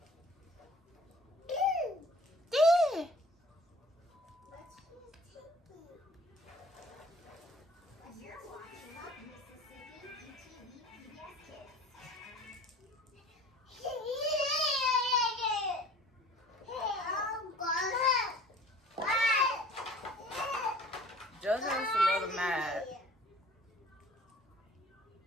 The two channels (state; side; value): normal; both; correlation 0.48